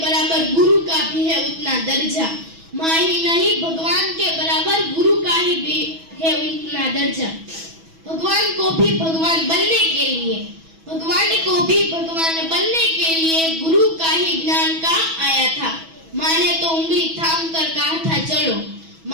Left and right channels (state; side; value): late; left; 6.1 ms